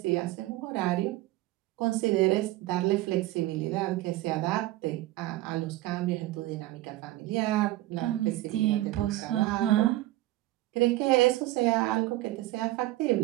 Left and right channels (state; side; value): quieter; left; 16.9 dB